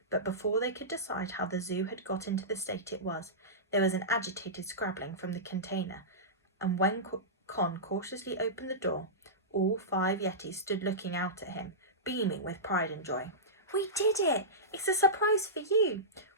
But before they could decide how the zoo had got into the state it was, there was an agitated scrabbling from the container, and when Con cautiously opened the door, all 5 Yetis stood looking out at him, beaming with pride and joy. "We did it! It's a surprise for you!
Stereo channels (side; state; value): both; normal; correlation -0.17